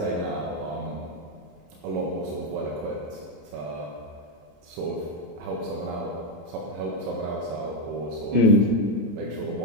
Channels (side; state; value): left; late; 26 ms